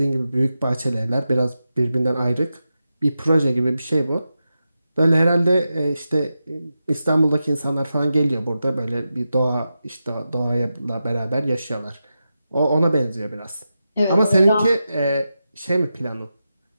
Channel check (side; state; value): both; inverted; correlation -0.90